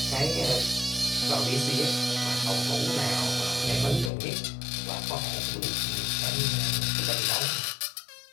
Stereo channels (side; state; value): right; drops out; at 4.1 s